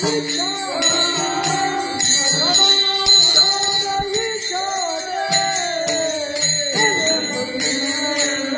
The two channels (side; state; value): both; identical; correlation 1.00